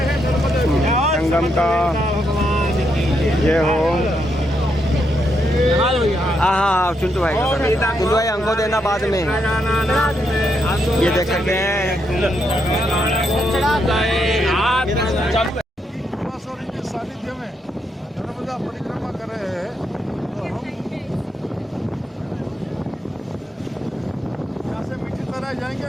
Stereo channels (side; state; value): both; normal; correlation 0.79